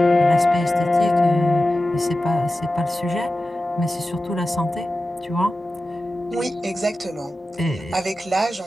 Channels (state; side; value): normal; both; correlation 0.94